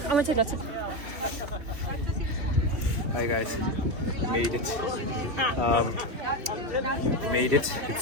I want to take lots of... Hi guys, made it. Made it.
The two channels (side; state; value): left; late; 3.3 ms